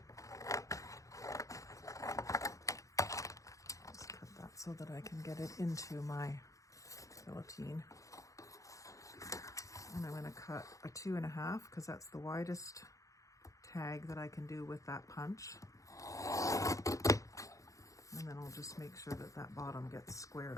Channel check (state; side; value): late; right; 0.16 ms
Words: Just cut that so that I can get it into my guillotine. And I'm going to cut a 2.5 because that's the widest tag that I can do with that punch. And then I'll just make sure that that bottom gets squared